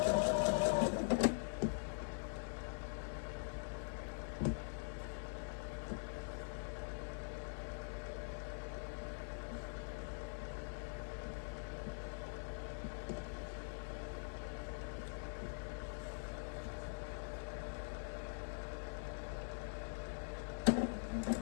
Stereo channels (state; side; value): silent; right; digital silence